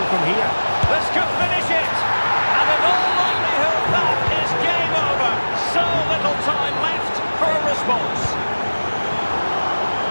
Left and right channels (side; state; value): both; inverted; correlation -1.00